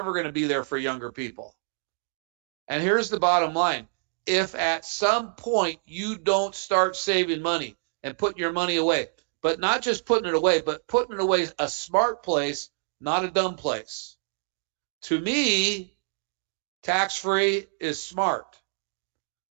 going to be there for younger people. And here's the bottom line. If at some point you don't start saving money and putting your money away, but not just putting it away, but putting it away a smart place, not a dumb place. To me, tax-free is smart.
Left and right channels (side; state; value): left; silent; digital silence